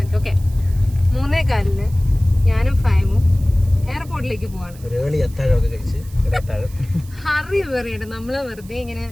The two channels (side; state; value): right; noise; hiss, 23 dB below the sound